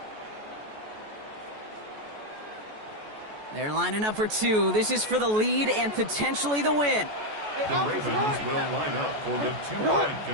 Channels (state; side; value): late; left; 14 ms